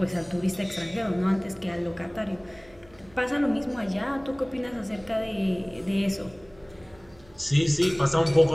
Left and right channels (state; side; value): noise; right; hum, 27 dB below the sound